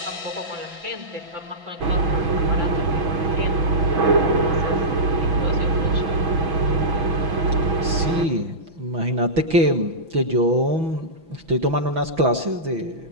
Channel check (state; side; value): late; left; 6.1 ms